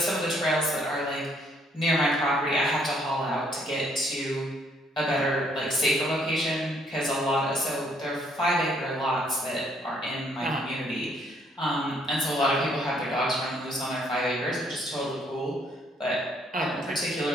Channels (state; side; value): normal; both; correlation 0.67